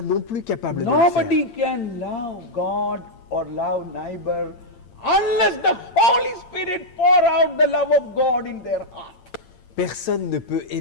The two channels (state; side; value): late; right; 8.8 ms